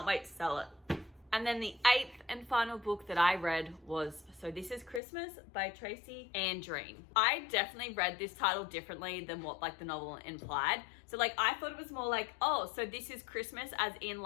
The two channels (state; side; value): drops out; right; at 5.0 s